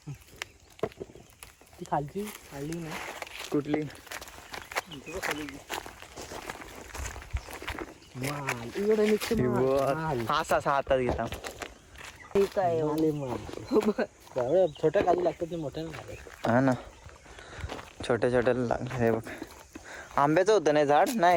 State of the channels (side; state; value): both; identical; correlation 1.00